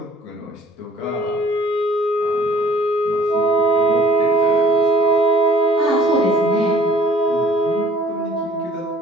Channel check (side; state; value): both; normal; correlation 0.54